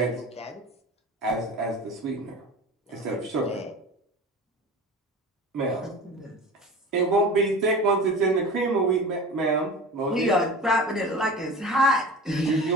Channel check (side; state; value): both; normal; correlation 0.34